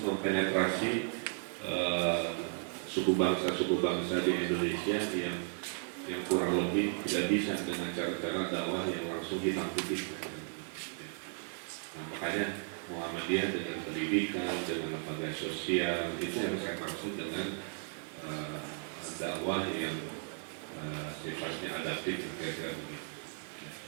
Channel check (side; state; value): left; silent; 54 dB below the other